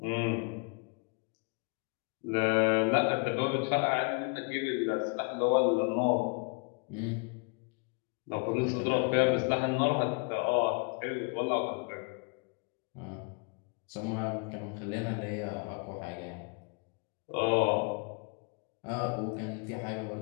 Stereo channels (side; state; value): right; quieter; 34.3 dB